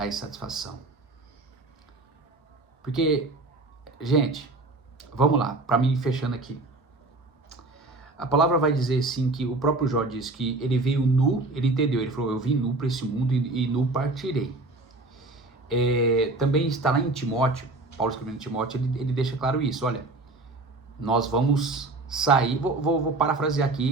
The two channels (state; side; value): quieter; left; 3.1 dB